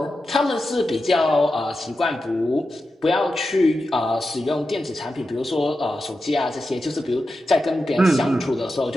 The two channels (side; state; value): both; normal; correlation 0.90